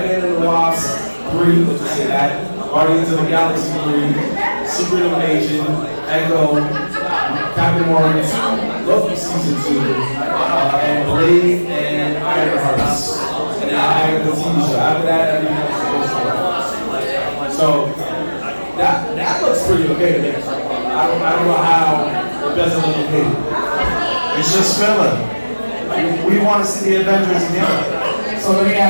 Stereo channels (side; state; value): both; inverted; correlation -1.00